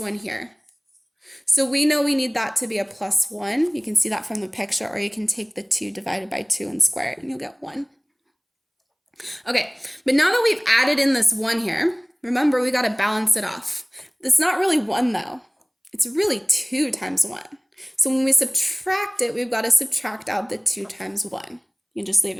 here. So we know we need that to be a +1. You can see that from the picture, or you can take the 2 divided by 2 and square it, and you'll get 1. Okay, but now that we've added in this 1 here, remember we got to balance it off. It's not really 1 though. It's really 2 times 1. So when we subtract it, we've got to subtract out the 2 times 1. You can just leave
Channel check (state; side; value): identical; both; correlation 1.00